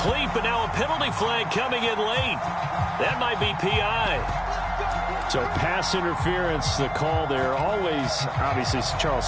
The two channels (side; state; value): both; identical; correlation 1.00